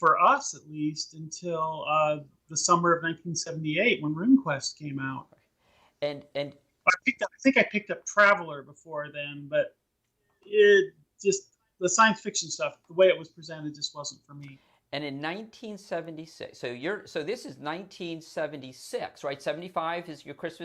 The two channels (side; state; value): both; identical; correlation 1.00